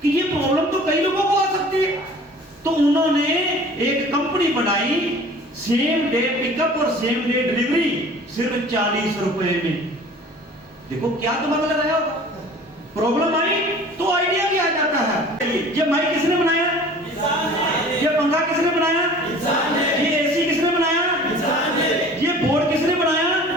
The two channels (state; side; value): normal; both; correlation 0.46